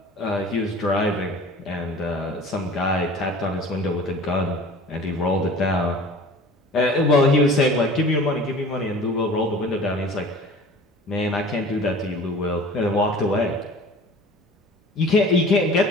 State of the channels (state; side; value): normal; both; correlation 0.43